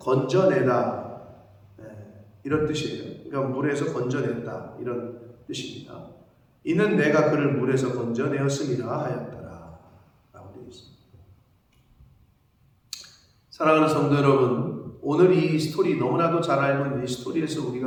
이런 뜻이에요. 그러니까 물에서 건져냈다 이런 뜻입니다. 이는 내가 그를 물에서 건져내었음이라 하였더라 라고 되어 있습니다. 사랑하는 성도 여러분, 오늘 이 스토리, 너무나도 잘 알고 있는 이 스토리에서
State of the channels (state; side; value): identical; both; correlation 1.00